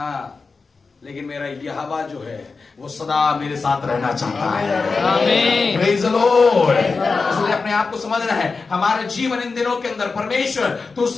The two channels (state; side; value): quieter; right; 4.4 dB